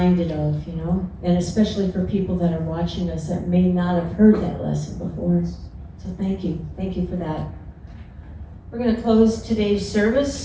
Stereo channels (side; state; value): both; identical; correlation 1.00